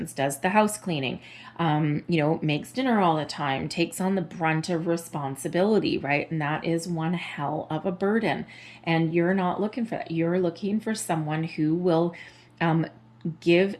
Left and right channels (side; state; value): both; identical; correlation 1.00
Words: does the house cleaning, makes dinner all the time, takes on the brunt of responsibility, right? And that is one hell of a burden. And you're not looking for that. You're looking for someone who will give